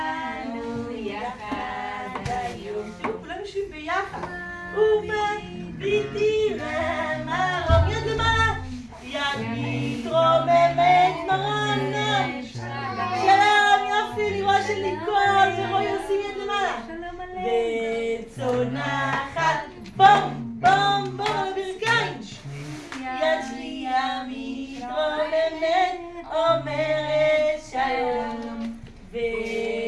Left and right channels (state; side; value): identical; both; correlation 1.00